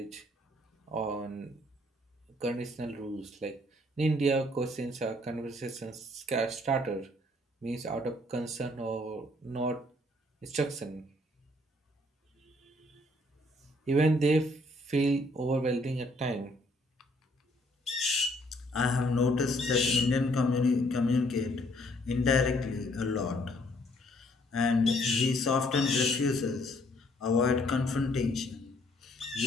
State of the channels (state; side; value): normal; both; correlation 0.65